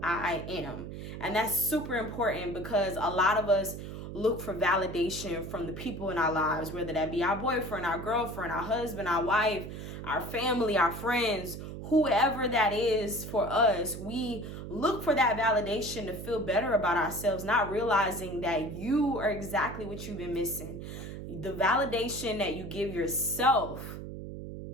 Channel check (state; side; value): noise; right; hum, 9 dB below the sound